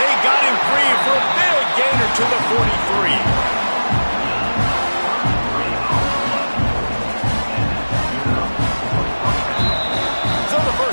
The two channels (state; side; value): inverted; both; correlation -1.00